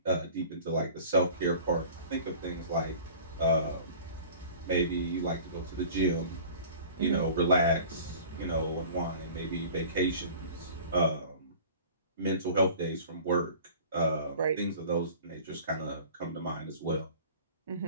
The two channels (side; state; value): both; inverted; correlation -0.44